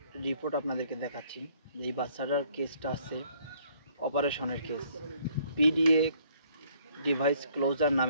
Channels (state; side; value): inverted; both; correlation -0.63